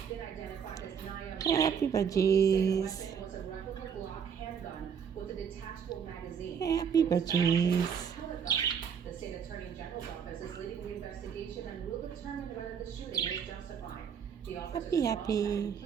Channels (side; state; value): left; quieter; 7.3 dB